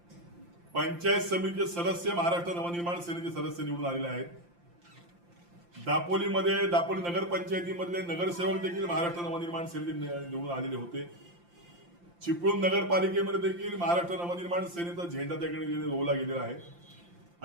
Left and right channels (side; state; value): left; late; 5.8 ms